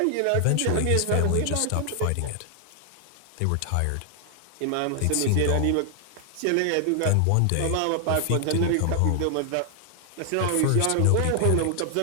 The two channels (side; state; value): both; different; correlation 0.00